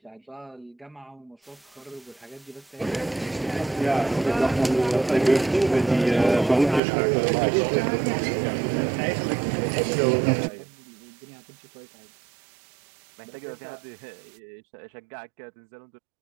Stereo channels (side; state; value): left; drops out; at 6.8 s